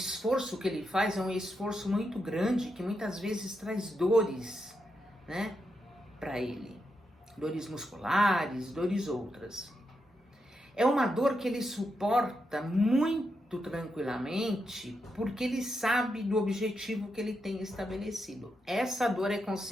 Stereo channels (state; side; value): normal; both; correlation 0.84